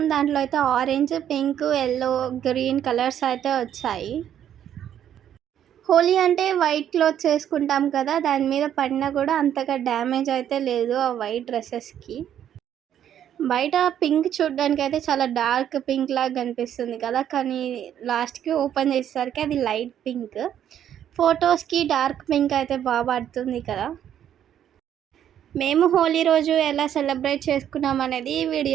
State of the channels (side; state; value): left; quieter; 10.1 dB